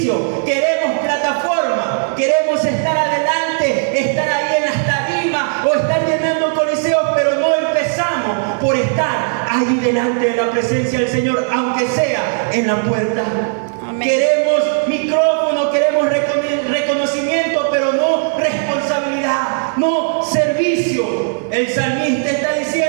Queremos plataforma, queremos estar adelante, estar ahí en las tarimas o estar llenando coliseos, pero no empezamos por estar ahí delante de la presencia del Señor, aunque sea en la puerta. Amén. Queremos micrófono, queremos reconocimiento, pero no responsabilidad, no servicio. El salmista está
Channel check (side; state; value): left; silent; 69 dB below the other